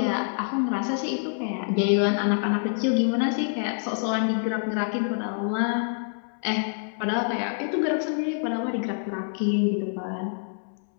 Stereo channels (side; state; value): right; silent; 61 dB below the other